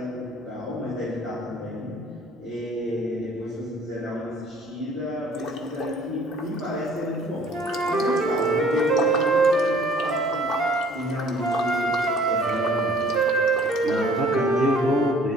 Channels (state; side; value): normal; both; correlation 0.54